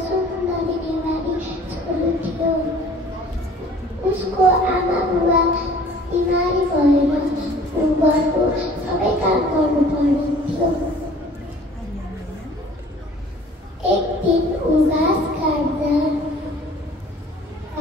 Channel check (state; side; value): normal; both; correlation 0.51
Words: सुन्दरी नेवारी छोरो थियो। उसको आमा बुवा बिमारी भएर घरको सबै काम गर्नु पर्ने। एक दिन ऊ घाँस काट्दा